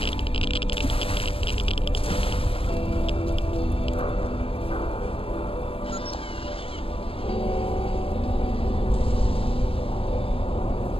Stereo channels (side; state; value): right; late; 0.27 ms